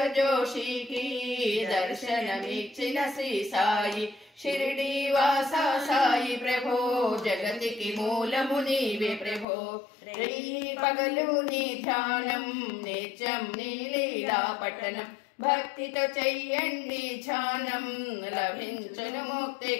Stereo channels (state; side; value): drops out; right; at 9.5 s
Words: జోషికి దర్శనమిచ్చిన శ్రీ సాయి. షిరిడి వాసా సాయి ప్రభో జగతికి మూలము నీవే ప్రభో, పగలు నీ ధ్యానం నిత్యం నీ లీలా పట్టణం, భక్తితో చెయ్యండి ధ్యానం లభించును